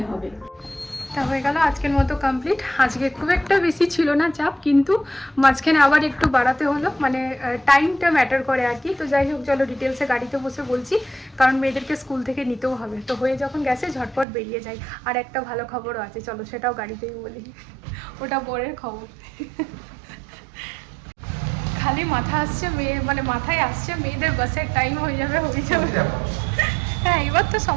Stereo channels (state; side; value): drops out; left; at 14.2 s